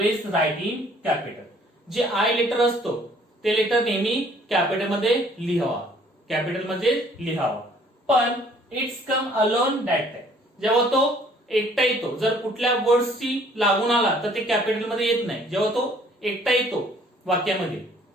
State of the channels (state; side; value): normal; both; correlation 0.58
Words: right in capital. जे I letter असतो ते letter नेहमी capital मध्ये लिहावा, capital मध्ये लिहावा. पण it's come alone that time. जेव्हा तो एकटा येतो, जर कुठल्या वर्ड्सची लागून आला तर ते कॅपिटल मध्ये येत नाही. जेव्हा तो एकटा येतो वाक्यामध्ये,